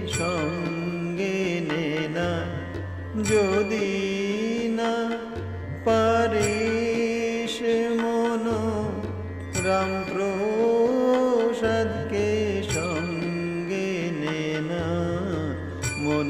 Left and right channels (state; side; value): identical; both; correlation 1.00